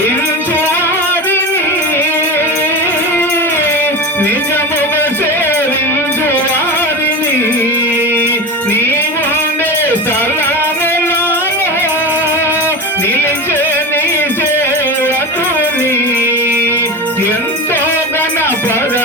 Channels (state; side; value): normal; both; correlation 0.25